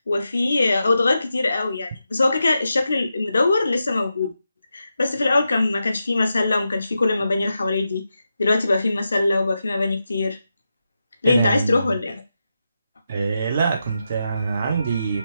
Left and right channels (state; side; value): inverted; both; correlation -0.88